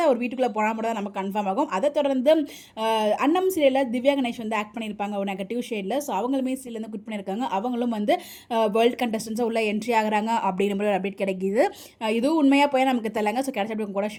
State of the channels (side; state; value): both; identical; correlation 1.00